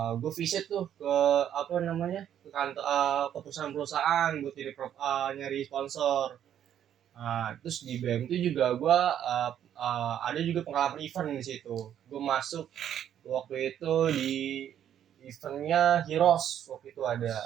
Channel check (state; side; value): quieter; left; 10.1 dB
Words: gue visit tuh ke apa namanya ke kantor ke perusahaan-perusahaan buat nyari sponsor. Terus di BM itu juga gua ada juga pengalaman event di situ. Gue masuk waktu itu di eventnya Heroes waktu itu ada.